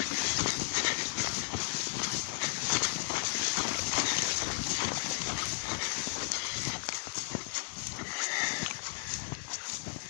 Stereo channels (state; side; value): silent; right; 55 dB below the other